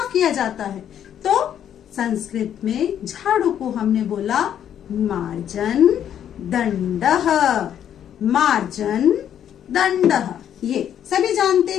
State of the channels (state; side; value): quieter; right; 9.8 dB